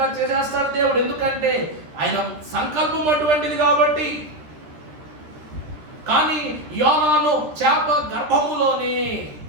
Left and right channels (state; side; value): late; left; 13 ms